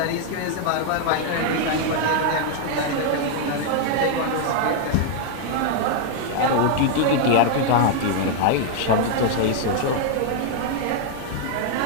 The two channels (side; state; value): both; different; correlation 0.00